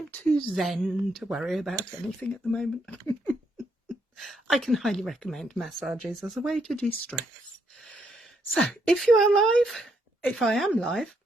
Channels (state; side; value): normal; both; correlation 0.75